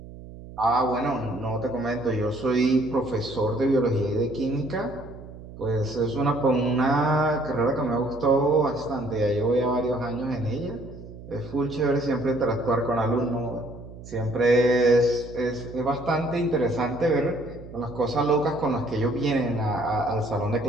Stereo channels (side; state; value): right; noise; hum, 15 dB below the sound